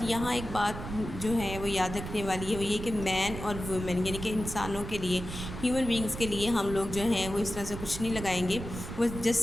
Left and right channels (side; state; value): right; noise; rumble, 8 dB below the sound